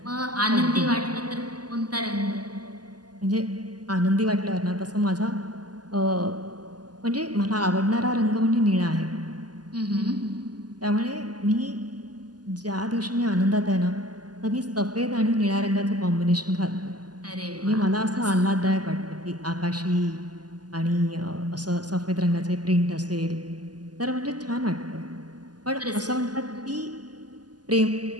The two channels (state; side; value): late; left; 0.69 ms